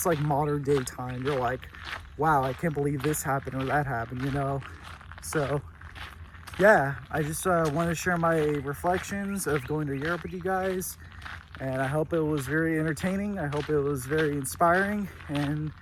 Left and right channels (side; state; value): both; identical; correlation 1.00